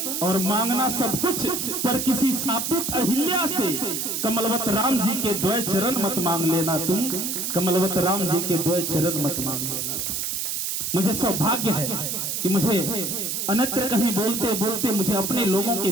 और मांगना सब कुछ पर किसी सापित अहिल्या से कमलवत राम जी के द्वय चरण मत मांग लेना तुम। कमलवत राम जी के द्वय चरण मत मांग लेना तुम। मुझे सौभाग्य है कि मुझे अन्यत्र कहीं बोलते बोलते मुझे अपने लोगों के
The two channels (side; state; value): right; noise; hiss, 2 dB below the sound